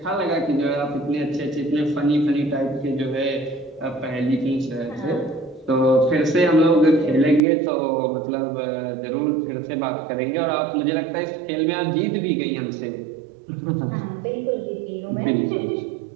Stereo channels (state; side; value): drops out; left; at 7.4 s